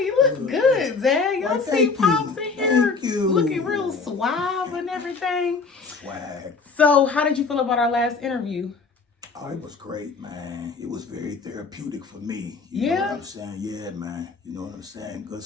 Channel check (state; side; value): quieter; right; 4.5 dB